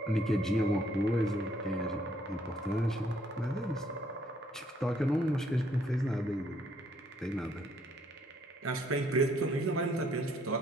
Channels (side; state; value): both; normal; correlation 0.67